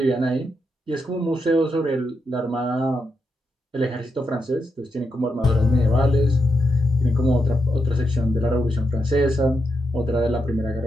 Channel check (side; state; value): both; normal; correlation 0.84